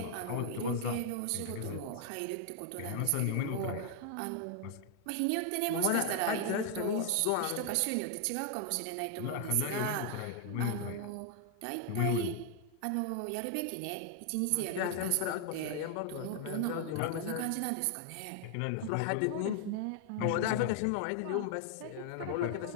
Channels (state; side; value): different; both; correlation 0.00